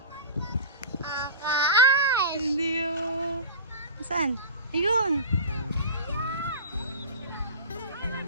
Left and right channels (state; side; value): inverted; both; correlation -0.32